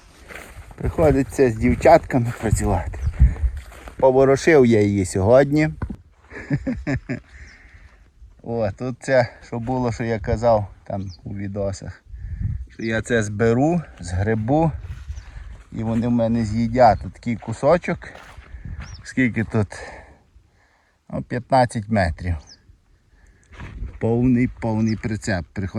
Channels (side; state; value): both; identical; correlation 1.00